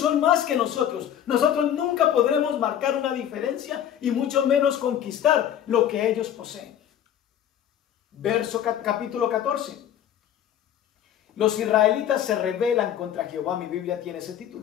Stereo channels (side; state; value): right; quieter; 10.2 dB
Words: más que nosotros. Nosotros nunca podremos marcar una diferencia y mucho menos conquistar lo que ellos poseen. Capítulo 14. Los israelitas se rebelan contra Jehová. Mi Biblia tiene ese